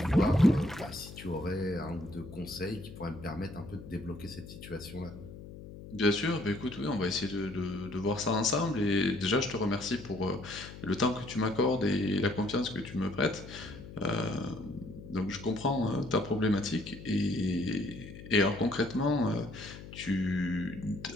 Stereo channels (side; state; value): left; noise; hum, 14 dB below the sound